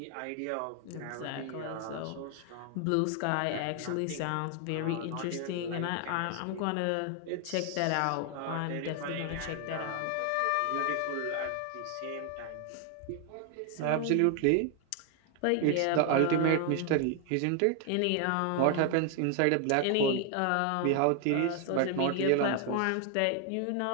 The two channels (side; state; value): both; different; correlation 0.00